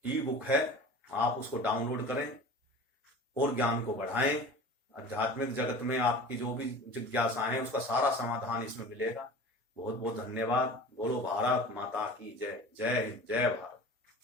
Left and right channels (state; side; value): normal; both; correlation 0.38